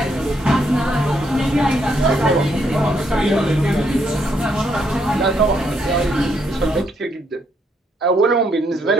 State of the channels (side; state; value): both; normal; correlation 0.74